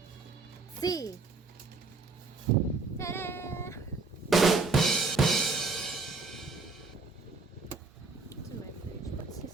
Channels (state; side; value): quieter; left; 3.9 dB